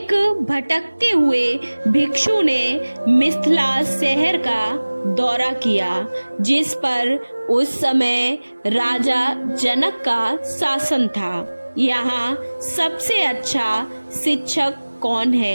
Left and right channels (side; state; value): both; inverted; correlation -1.00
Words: भटकते हुए भिक्षु ने मिथिला शहर का दौरा किया, जिस पर उस समय राजा जनक का शासन था। यहाँ सबसे अच्छा शिक्षक कौन